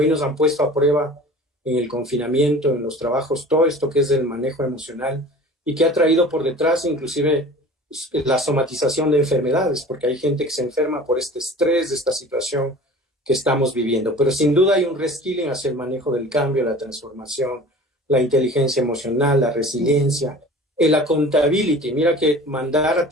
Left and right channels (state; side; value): normal; both; correlation 0.42